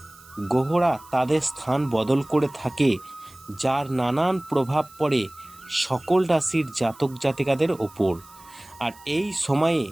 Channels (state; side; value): noise; right; hiss, 24 dB below the sound